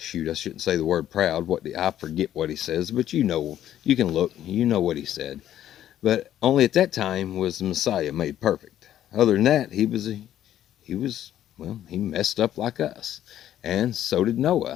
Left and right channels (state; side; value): quieter; right; 11.6 dB